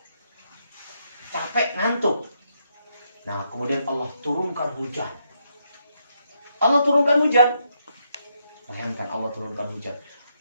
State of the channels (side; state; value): both; inverted; correlation -0.78